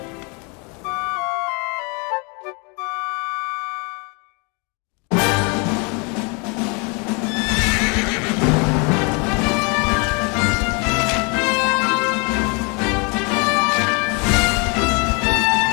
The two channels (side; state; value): right; quieter; 32.4 dB